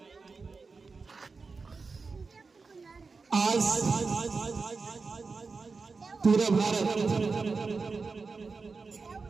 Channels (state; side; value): quieter; left; 4.4 dB